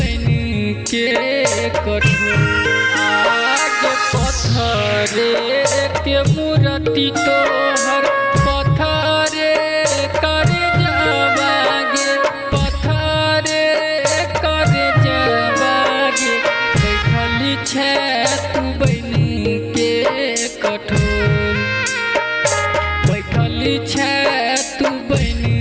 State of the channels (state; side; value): identical; both; correlation 1.00